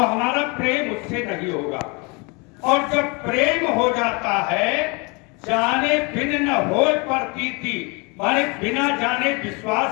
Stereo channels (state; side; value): quieter; right; 29.9 dB